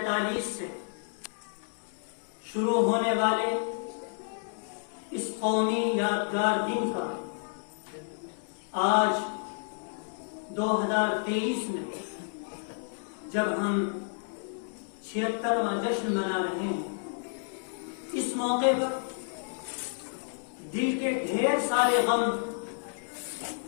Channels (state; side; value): silent; right; digital silence